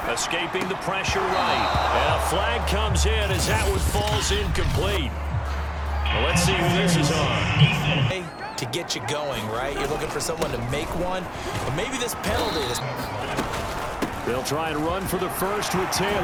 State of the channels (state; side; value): identical; both; correlation 1.00